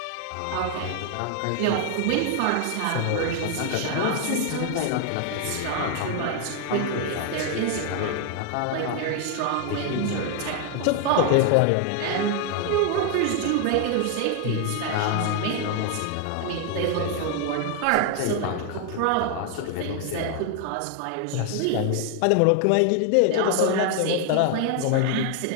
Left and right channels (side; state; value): both; different; correlation 0.00